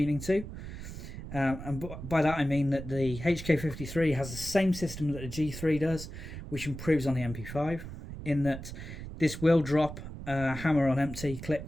to. And by that I mean that the HK53 has the same system that the G3 does, which improves on the MP5, in that this will drop a hammer on empty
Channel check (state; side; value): noise; right; rumble, 10 dB below the sound